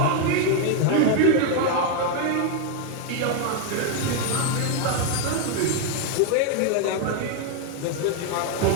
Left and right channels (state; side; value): different; both; correlation 0.01